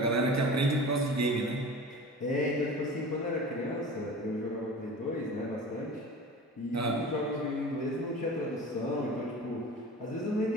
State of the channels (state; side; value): normal; both; correlation 0.36